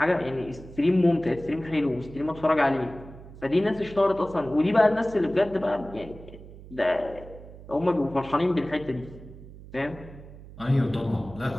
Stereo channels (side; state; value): right; noise; hum, 17 dB below the sound